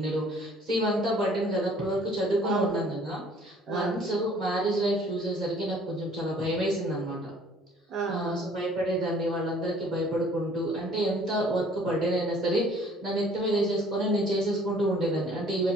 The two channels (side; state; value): both; normal; correlation 0.56